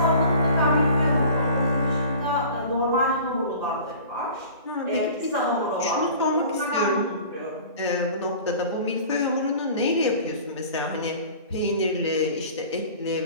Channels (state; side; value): inverted; both; correlation -0.42